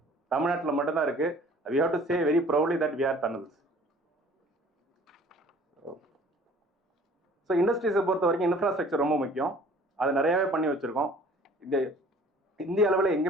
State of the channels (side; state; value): both; normal; correlation 0.51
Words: தமிழ்நாட்டில் மட்டும்தான் இருக்கு. we have to say very proudly that we are Tamils. So இண்டஸ்ட்ரீஸை பொறுத்த வரைக்கும் இன்ஃப்ராஸ்ட்ரக்சர் ரொம்ப முக்கியம். அது நிறையவே பண்ணி வச்சிருக்கோம். இந்த இந்திய அளவில்